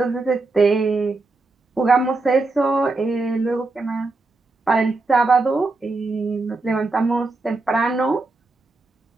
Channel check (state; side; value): quieter; left; 3.3 dB